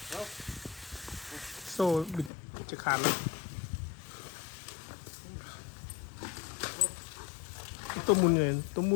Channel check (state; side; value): drops out; right; at 2.3 s